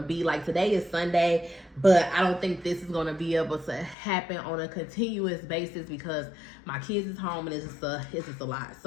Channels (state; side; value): drops out; right; at 4.0 s